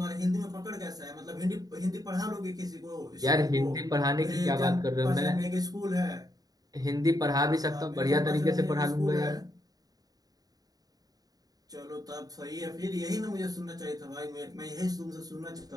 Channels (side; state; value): left; late; 0.18 ms